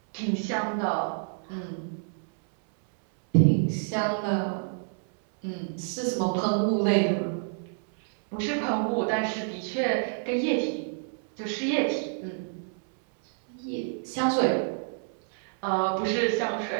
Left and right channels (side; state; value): left; silent; 59 dB below the other